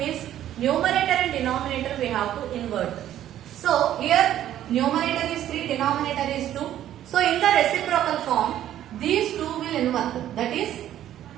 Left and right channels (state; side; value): quieter; left; 11.9 dB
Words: numerator and denominator we have to invert. So here numerator is 3, denominator is 2. So in the reciprocal form these two will invert. That is